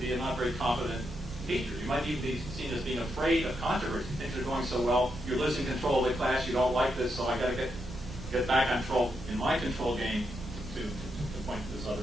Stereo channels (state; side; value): noise; right; rumble, 11 dB below the sound